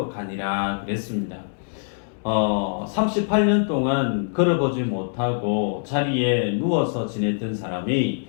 그랬습니다. 38년 동안 걸어보지 못하고 자리에 누워서 지냈던 사람이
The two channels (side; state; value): right; silent; digital silence